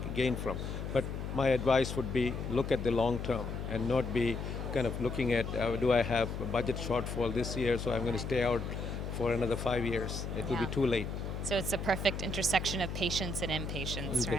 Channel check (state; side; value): noise; left; hum, 5 dB below the sound